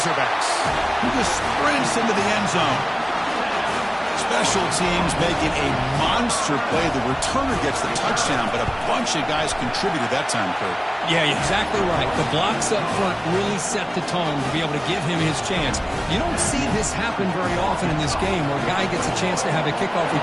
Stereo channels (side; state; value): both; identical; correlation 1.00